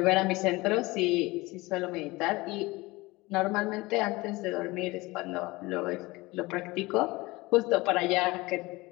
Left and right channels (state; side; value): quieter; right; 21.8 dB